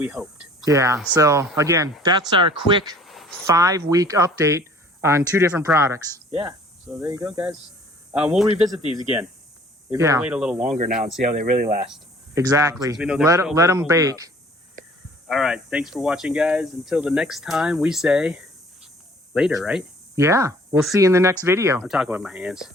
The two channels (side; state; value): both; normal; correlation 0.53